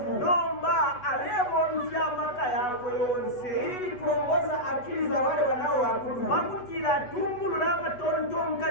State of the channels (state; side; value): late; right; 8.1 ms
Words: nomba alebomvya amaka yako yonse ili kuongoza akili za wale wanaoabudu. pakutila atungulula